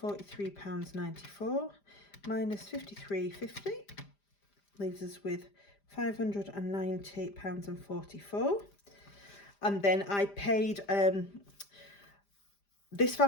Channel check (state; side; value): late; right; 5.0 ms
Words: minus £53.50 leaves us with £590.44. And then I paid this